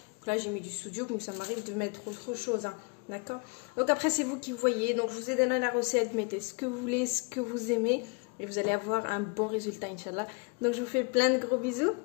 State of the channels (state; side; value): quieter; right; 31.4 dB